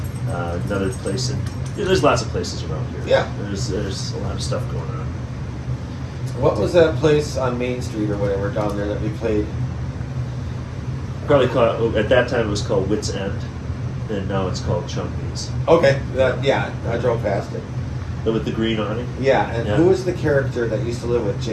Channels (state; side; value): identical; both; correlation 1.00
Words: another place there's lots of places around here. Yeah. There's a lot of stuff going on. What was that place on Main Street or whatever down there that we played? Probably at that time it was called Wits End, and now it's called Chunky's. Okay, yeah, I drove past it. With the green awning. Yeah, and Yeah. who was the character that used to live with